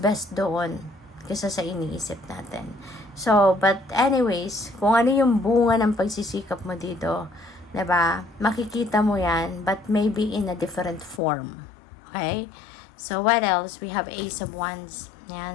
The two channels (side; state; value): right; drops out; at 11.2 s